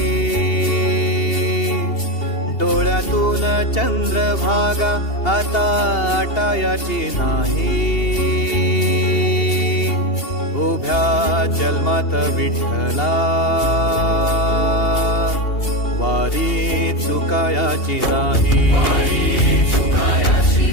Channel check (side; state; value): right; late; 2.8 ms